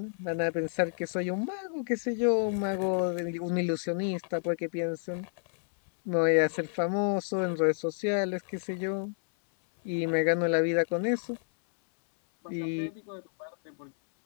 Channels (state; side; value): silent; right; 58 dB below the other